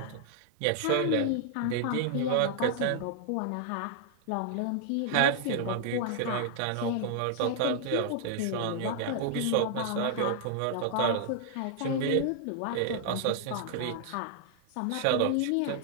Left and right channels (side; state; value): both; different; correlation -0.01